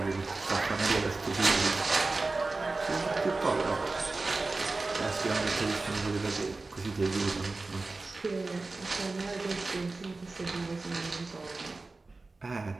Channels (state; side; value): quieter; left; 3.5 dB